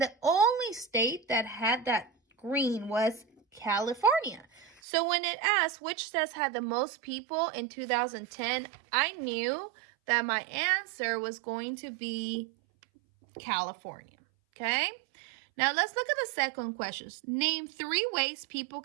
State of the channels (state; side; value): drops out; left; at 4.8 s